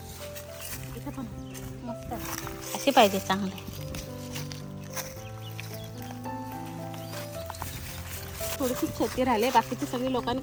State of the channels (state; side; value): identical; both; correlation 1.00